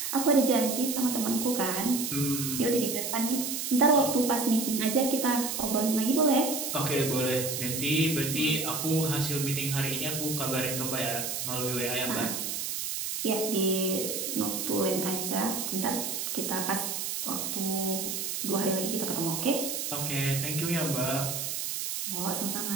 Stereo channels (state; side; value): noise; right; hiss, 3 dB below the sound